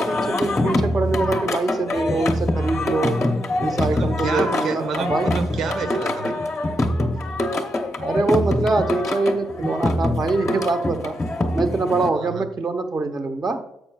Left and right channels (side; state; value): both; normal; correlation 0.84